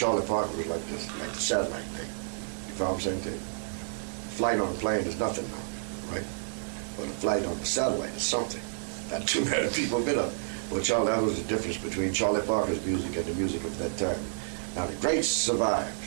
Parker was like the satellite thing. You know what I'm saying? Flight on a plane is nothing now, right? But a flight on a satellite is something. Not too many people have been up. Well, that was the difference between Charlie Parker's music and the music of that time. Now the greats survived,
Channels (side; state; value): left; silent; digital silence